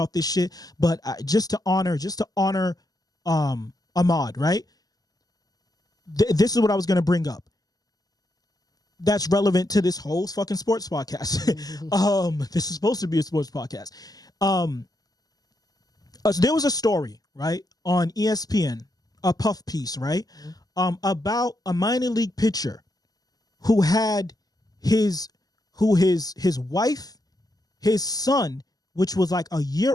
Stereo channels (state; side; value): late; right; 0.18 ms